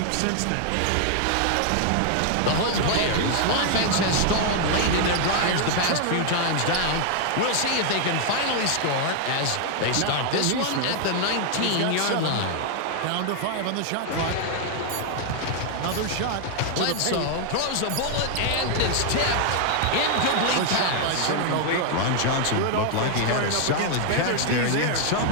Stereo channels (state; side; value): different; both; correlation 0.00